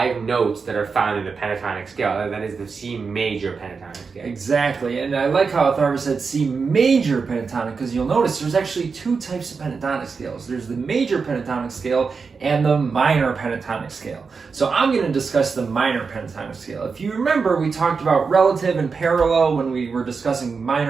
notes that are found in the pentatonic scale. That is the C major pentatonic scale. Exactly, and I like how Atharva said C major pentatonic, because you'll notice there's actually 2 types of pentatonic scales. There's the major pentatonic scale and the minor pentatonic scale. So I'm going to discuss the minor pentatonic scale. If you remember, we talked about relative and parallel when we were discussing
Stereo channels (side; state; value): left; quieter; 5.1 dB